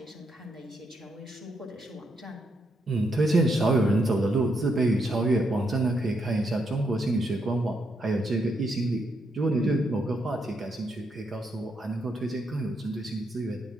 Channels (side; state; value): both; normal; correlation 0.79